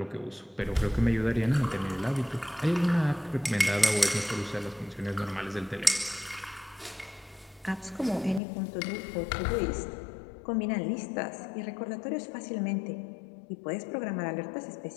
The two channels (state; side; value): drops out; right; at 8.4 s